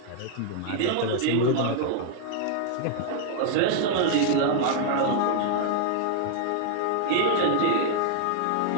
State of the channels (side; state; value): both; different; correlation 0.00